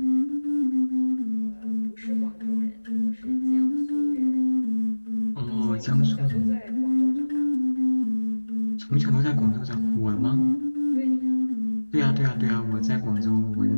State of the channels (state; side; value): inverted; both; correlation -1.00